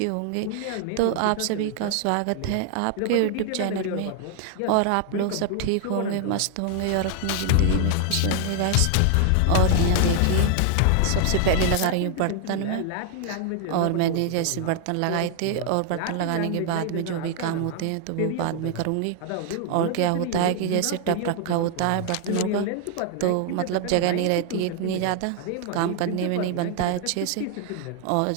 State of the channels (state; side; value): different; both; correlation 0.00